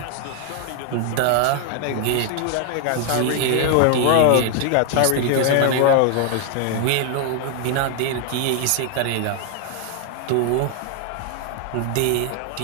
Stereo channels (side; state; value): both; different; correlation 0.00